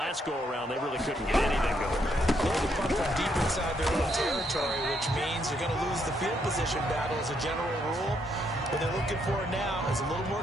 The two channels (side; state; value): both; normal; correlation 0.74